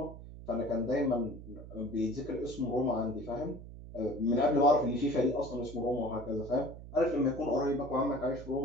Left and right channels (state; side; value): noise; right; hum, 14 dB below the sound